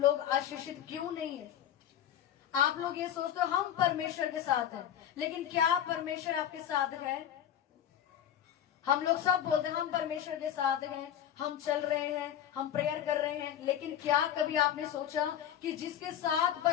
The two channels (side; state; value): right; quieter; 10.2 dB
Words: आशीषित क्यों नहीं है? आप लोग ये सोचते हो हम परमेश्वर के साथ हैं, लेकिन क्या परमेश्वर आपके साथ है? हम लोग सब बोलते हैं हम परमेश्वर के साथ हैं, हम चल रहे हैं, हम प्रेयर कर रहे हैं, लेकिन क्या कभी आपने सोचा कि जिसके साथ